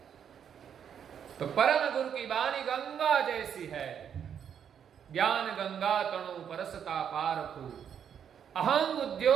तो परम गुरु की वाणी गंगा जैसी है। ज्ञान गंगा तणु परसता पारखु, अहं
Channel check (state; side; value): quieter; left; 8.3 dB